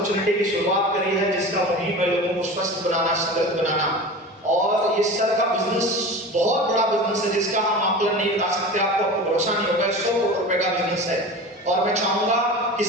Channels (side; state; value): both; normal; correlation 0.33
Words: की शुरुआत करी है, जिसका मुहिम है लोगों को स्वस्थ बनाना, समृद्ध बनाना। और ये सर का बिजनेस बहुत बड़ा बिजनेस है, जिसका हम आकलन नहीं बता सकते, आपको भरोसा नहीं होगा, 100 करोड़ रुपए का बिजनेस है। और मैं चाहूंगा कि